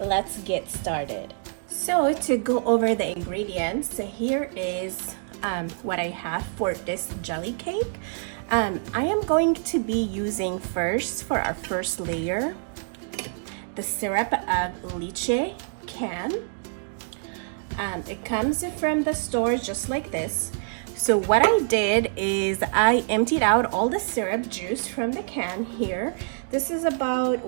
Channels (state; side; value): silent; left; digital silence